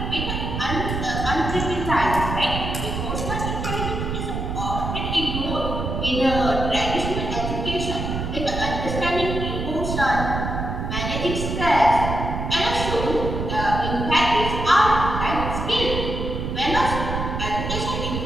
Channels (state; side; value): noise; right; rumble, 3 dB below the sound